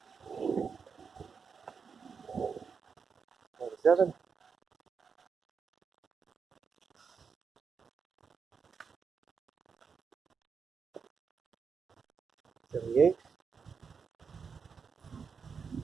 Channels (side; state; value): left; quieter; 5.8 dB